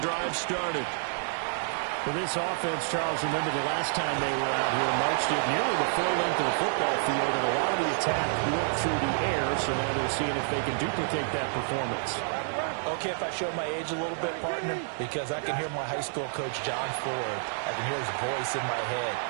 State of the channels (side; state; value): left; silent; 59 dB below the other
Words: drive started. For this offense, Charles, remember the last time they were out here, marched it nearly the full length of the football field, and a lot of the attack went through the air, so now they're seeing if they can duplicate that performance. Okay, if I show my age a little bit, partner, because I can hear my high school coach, John Ford. I can hear his voice in my head.